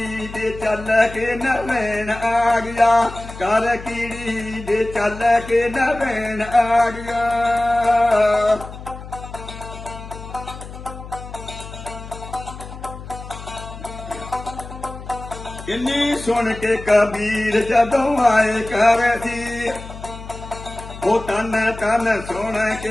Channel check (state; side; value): noise; left; hum, 13 dB below the sound